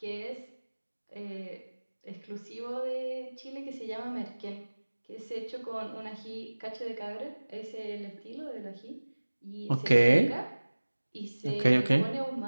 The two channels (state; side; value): inverted; both; correlation -1.00